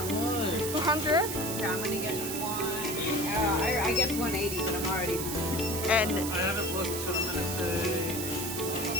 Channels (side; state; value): right; noise; hiss, 4 dB below the sound